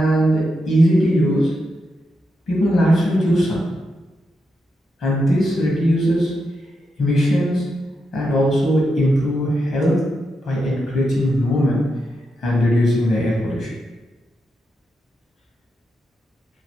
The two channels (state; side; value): normal; both; correlation 0.85